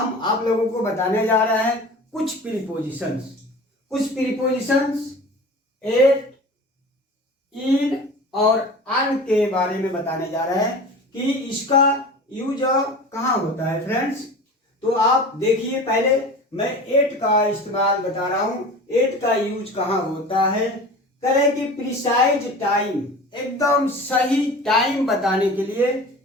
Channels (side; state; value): both; normal; correlation 0.37